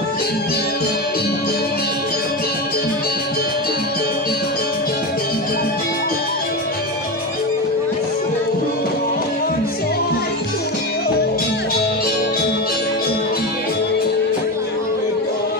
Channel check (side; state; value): both; normal; correlation 0.19